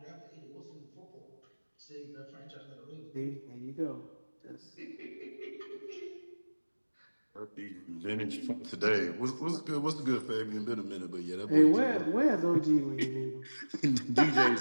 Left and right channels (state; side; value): inverted; both; correlation -1.00